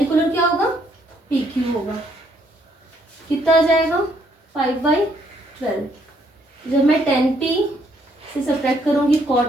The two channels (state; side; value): normal; both; correlation 0.70